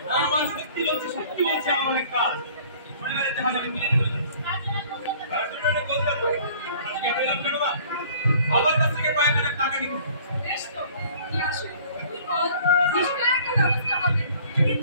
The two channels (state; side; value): inverted; both; correlation -0.52